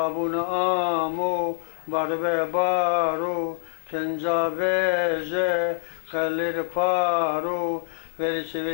amo barbe baro kenca veje kalir paro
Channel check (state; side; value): silent; right; 62 dB below the other